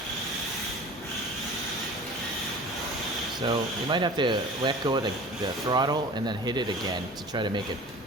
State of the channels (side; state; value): both; normal; correlation 0.40